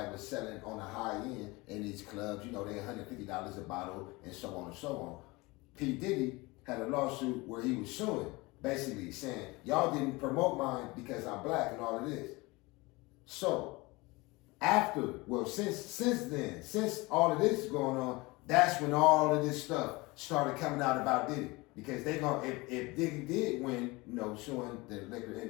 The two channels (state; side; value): quieter; right; 23.5 dB